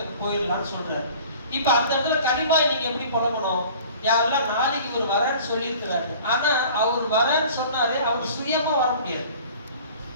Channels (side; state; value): both; inverted; correlation -0.46